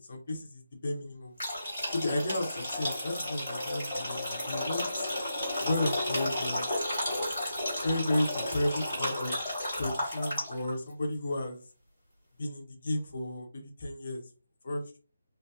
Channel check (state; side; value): inverted; both; correlation -0.86